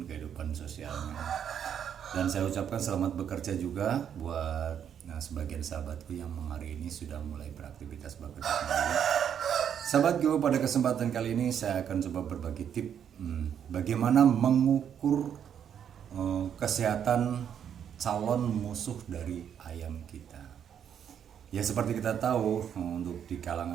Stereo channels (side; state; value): left; quieter; 8.7 dB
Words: kehidupan sosialnya. Dan saya ucapkan selamat bekerja juga buat sebagian sahabatku yang hari ini sudah mulai beraktivitas bekerja kembali. Sahabatku, pada kesempatan kali ini saya akan coba berbagi tip bagaimana mengukur kesehatan calon musuh dari ayam kita. Ya seperti kita tahu, untuk di